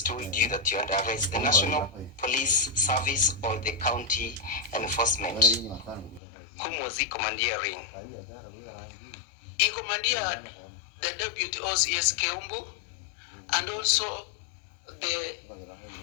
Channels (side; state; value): right; drops out; at 6.2 s